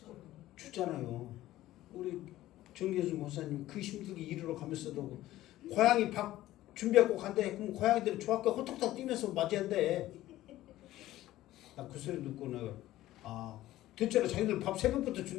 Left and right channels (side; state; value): right; quieter; 15.2 dB